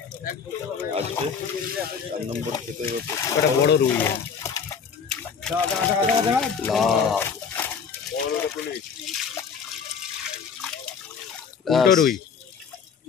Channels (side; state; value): right; quieter; 6.3 dB